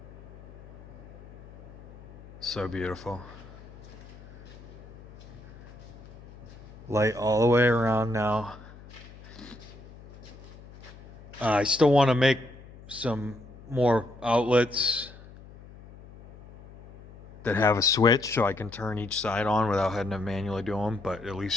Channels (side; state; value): left; noise; hum, 19 dB below the sound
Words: So beautiful. Light all the way around now. I still want to make some more outlets that have a switch so I can turn each side on without having to manually do them, but at